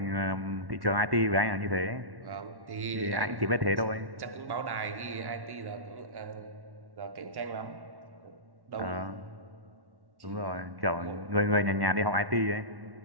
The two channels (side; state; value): left; late; 1.1 ms